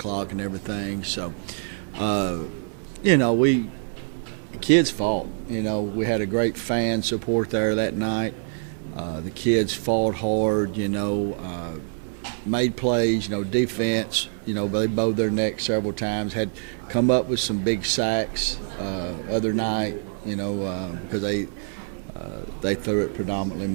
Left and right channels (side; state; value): left; silent; digital silence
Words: and everything. So, the kids fought. We had a great fan support there that night. The kids fought hard, made plays, defense. They bowed their neck several times, had come up with some big sacks other night, because they threw it predominantly